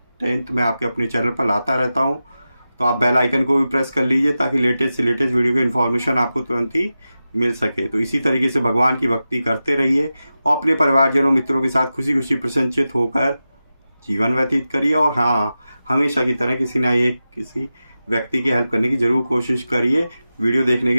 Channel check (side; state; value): both; inverted; correlation -0.93